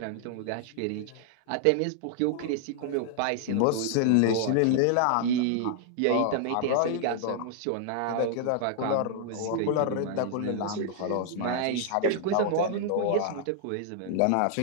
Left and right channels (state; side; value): different; both; correlation -0.01